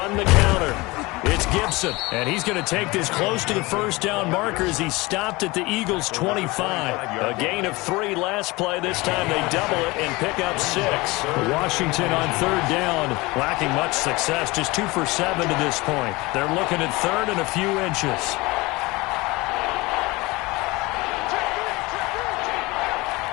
the counter. It's Gibson, and he's going to take this close to the first down marker as he stopped at the Eagles' 25. A gain of 3 last play. This time they double it and pick up 6. Washington on 3rd down, lacking much success, just 2 for 7 to this point. They're looking at 3rd and a few inches.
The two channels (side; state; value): right; quieter; 22.7 dB